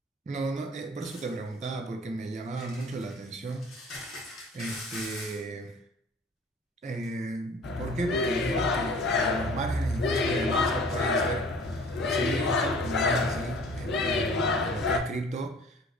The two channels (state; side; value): normal; both; correlation 0.48